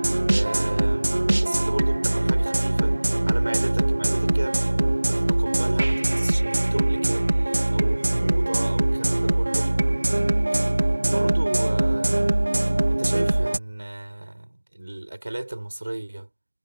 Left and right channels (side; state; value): both; inverted; correlation -1.00